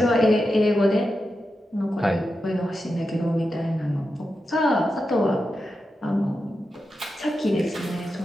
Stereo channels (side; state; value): both; normal; correlation 0.89